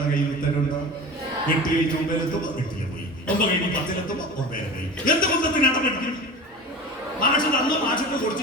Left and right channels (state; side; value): normal; both; correlation 0.33